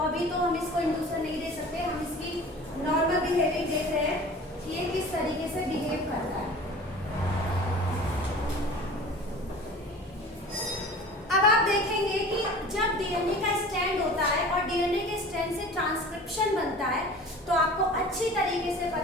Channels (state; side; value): normal; both; correlation 0.41